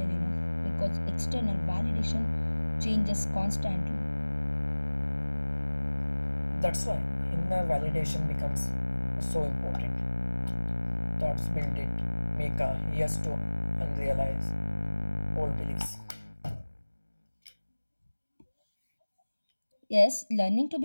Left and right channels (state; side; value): inverted; both; correlation -1.00